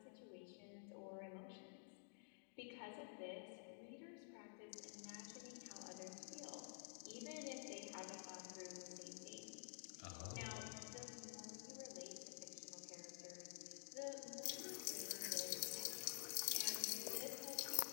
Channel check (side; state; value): right; silent; digital silence